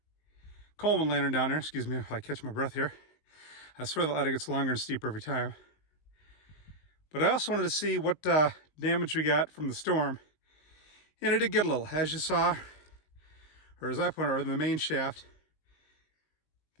Coleman lantern down there. Excuse me if I catch my breath here. I swear the ladder gets longer and steeper every time. But I also wanted to see what damage we got from the storm. And it did get a little, as you saw, or as I pointed out, in the main shaft,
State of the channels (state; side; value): late; right; 19 ms